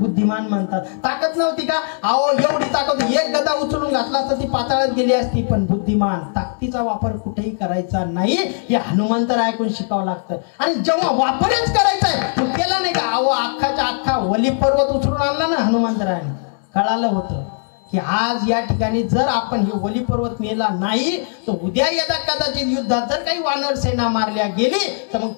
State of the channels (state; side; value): silent; right; digital silence